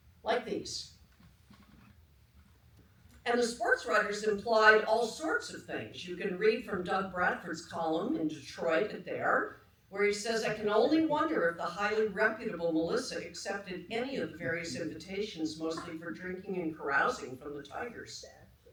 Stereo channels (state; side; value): identical; both; correlation 1.00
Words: like these. And the sports writers implied all sorts of things. You can read from Doug Bradford's column in Detroit at There, where he says, "I can only wonder if the highly reputable Melissa accepted any of the various invitations, mostly for drinking and carousing, from the Tigers."